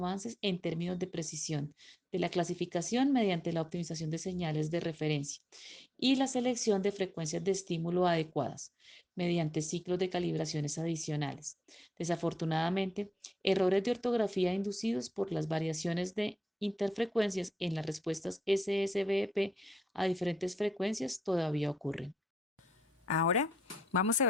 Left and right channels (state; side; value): normal; both; correlation 0.85